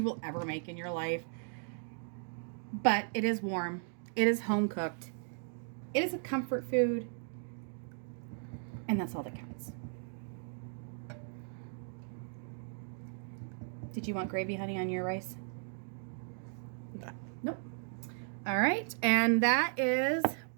will ever make in your life, but it is warm. It is home cooked. It is a comfort food, and that's all that counts. Did you want gravy, honey, on your rice? No. Nope. All right, and that is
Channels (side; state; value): left; silent; 54 dB below the other